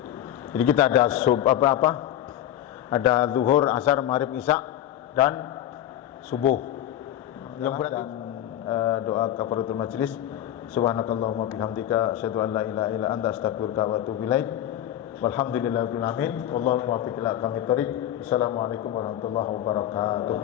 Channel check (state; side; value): quieter; right; 11.9 dB